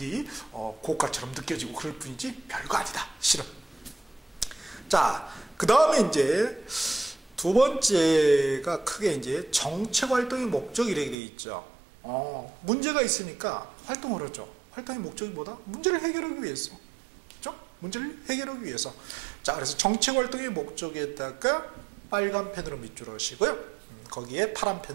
고가처럼 느껴지고 그럴 뿐이지 별거 아니다. 실은. 자, 그 다음에 이제 두 번째가 크게 이제 정책 활동의 목적 이렇게 되어 있죠. 문제가 있으니까 활동을 하죠. 활동의 목적이 뭐다? 문제를 해결하기 위해서. 그렇죠? 문제를 해결하기 위해서. 자, 그래서 정책 활동의 목적에다가 빨간 펜으로 밑줄 하시고요. 거기에 파란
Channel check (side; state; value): left; drops out; at 11.2 s